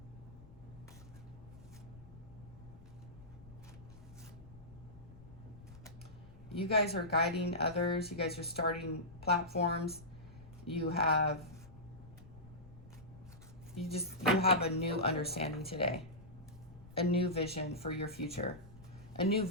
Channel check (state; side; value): noise; left; rumble, 19 dB below the sound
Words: You guys are guiding others. You guys are starting platforms. You have a new understanding today. A new vision for your future. A new